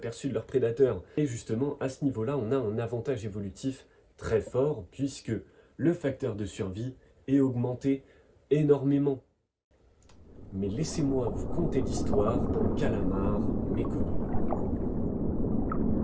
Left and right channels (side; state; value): both; identical; correlation 1.00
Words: de leurs prédateurs. Et justement, à ce niveau-là, on a un avantage évolutif très fort puisque le facteur de survie est augmenté énormément. Mais laissez-moi vous conter l'histoire d'un calamar méconnu.